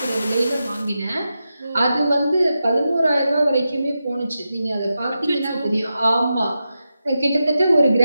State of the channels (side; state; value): both; inverted; correlation -0.90